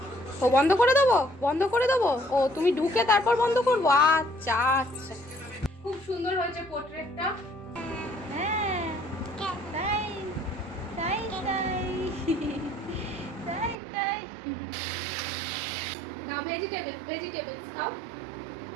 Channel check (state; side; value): drops out; left; at 13.8 s